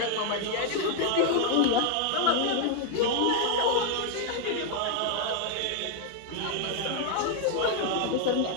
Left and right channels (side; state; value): both; different; correlation 0.00